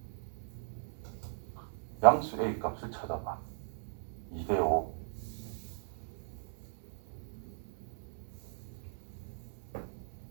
양수 A 값을 찾아봐. 2대 5.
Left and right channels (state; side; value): silent; left; digital silence